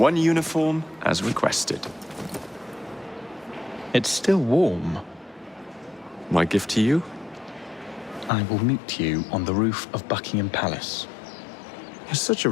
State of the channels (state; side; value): drops out; right; at 8.3 s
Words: uniform as requested. It's still warm. My gift to you? I will meet you on the roof of Buckingham Palace. You're such a